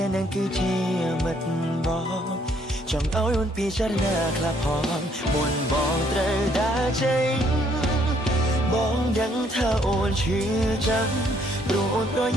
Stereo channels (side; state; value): both; normal; correlation 0.67